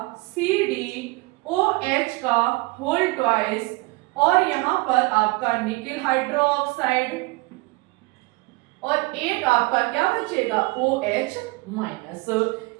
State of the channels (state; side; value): quieter; left; 23.9 dB